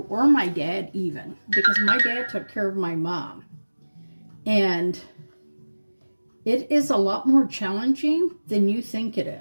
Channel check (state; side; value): inverted; both; correlation -1.00